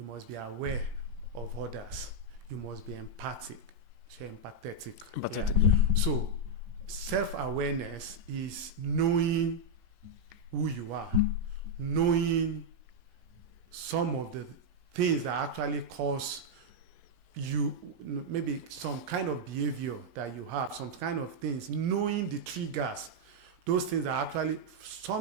must be aware of others, you must be empathetic. Yeah. So self-awareness is knowing who you are, knowing some of the things that actually cause you, maybe some kind of behavior that you have, some kind of things, knowing the triggers, those things are actually,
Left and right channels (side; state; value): left; late; 17 ms